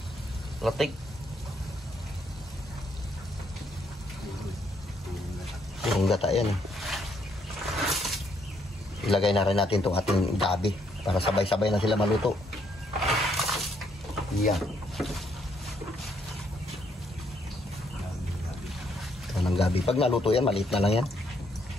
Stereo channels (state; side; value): normal; both; correlation 0.72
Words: Latik. Yung gata yan eh. Ilagay na rin natin itong ating gabi para sabay-sabay na sila maluto. Yan. Ito ng gabi. Pag naluto yan, maliit na lang yan.